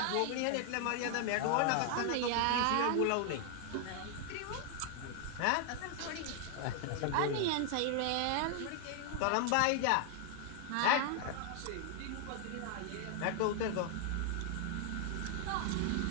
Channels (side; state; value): both; different; correlation 0.00